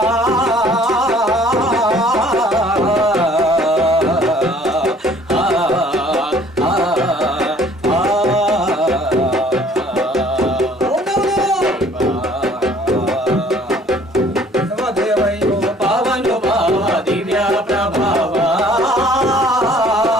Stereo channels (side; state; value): both; normal; correlation 0.56